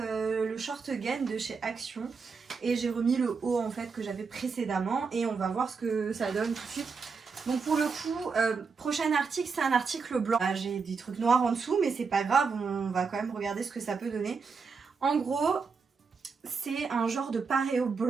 short gain de chez Action. Et j'ai remis le haut en fait que j'avais précédemment et on va voir ce que ça donne tout de suite. Donc pour le coup, prochain article, c'est un article blanc. J'ai des trucs noirs en dessous mais c'est pas grave, on va quand même regarder ce que ça peut donner. En gros, c'est un genre de paréo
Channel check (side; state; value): left; quieter; 5.1 dB